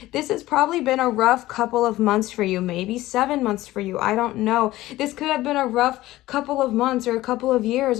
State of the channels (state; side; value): quieter; right; 16.6 dB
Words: this has probably been a rough couple of months for you, maybe 7 months for you. I don't know. This could have been a rough couple of months or a couple of years